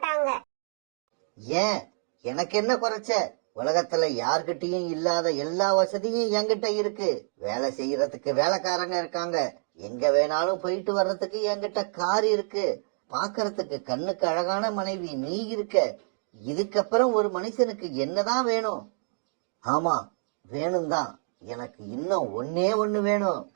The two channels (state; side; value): silent; left; digital silence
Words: ஏன், எனக்கு என்ன குறைச்ச? உலகத்துல யார்கிட்டயும் இல்லாத எல்லா வசதியும் என்கிட்ட இருக்கு. வேலை செய்யறதுக்கு வேலைக்காரங்க இருக்காங்க. எங்க வேணாலும் போயிட்டு வர்றதுக்கு என்கிட்ட கார் இருக்கு. பாக்குறதுக்கு கண்ணுக்கு அழகான மனைவி நீ இருக்க. இதுக்கப்புறம் ஒரு மனுஷனுக்கு என்னதான் வேணும்? ஆமா, வேணும் தான். எனக்கு இன்னும் ஒன்னே ஒண்ணு வேணும்.